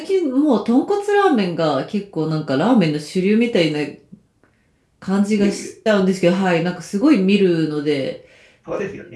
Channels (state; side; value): identical; both; correlation 1.00